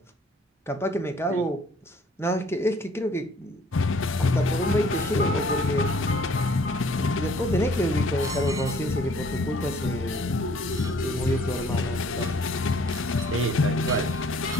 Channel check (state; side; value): normal; both; correlation 0.58